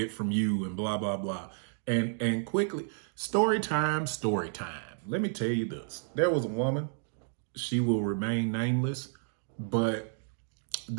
from you and blah, blah, blah. And quickly, story time. Let me tell you this. There was a woman, she will remain nameless, but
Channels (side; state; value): left; silent; digital silence